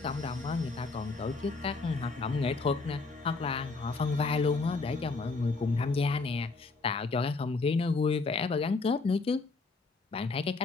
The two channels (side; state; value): right; quieter; 3.9 dB